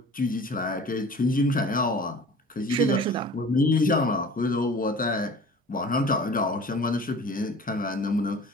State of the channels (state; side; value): normal; both; correlation 0.43